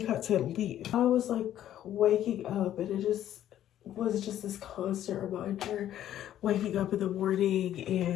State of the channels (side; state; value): right; quieter; 11.7 dB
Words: to leave. I was like waking up, and it was just this constant reminder, waking up in the morning